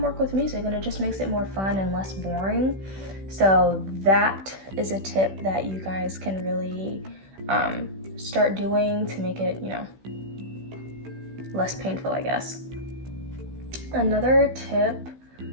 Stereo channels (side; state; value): left; late; 16 ms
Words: with music, and it just makes it more fun and less boring. So that is a tip that you guys can really start doing to make it, less painful, I guess. Another tip,